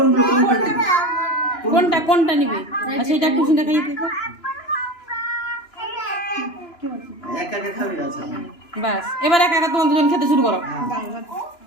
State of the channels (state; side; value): late; right; 2.9 ms